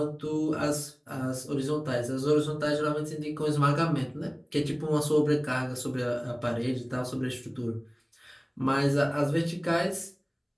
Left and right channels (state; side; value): identical; both; correlation 1.00